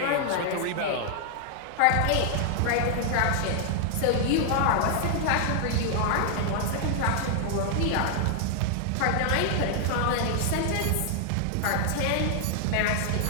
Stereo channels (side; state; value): both; different; correlation 0.00